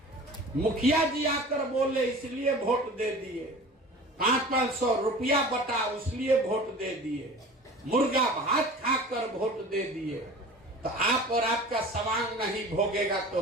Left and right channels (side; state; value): both; normal; correlation 0.39